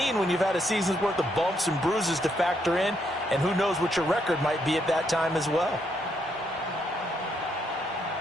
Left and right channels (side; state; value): both; normal; correlation 0.75